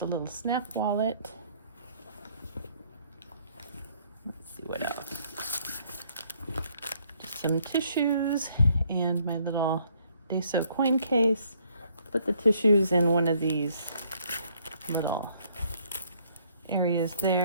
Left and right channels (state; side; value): inverted; both; correlation -0.66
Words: little snap wallet. Let's see what else. Just some tissues and my little Deso coin case. Put the tissues in one of these little areas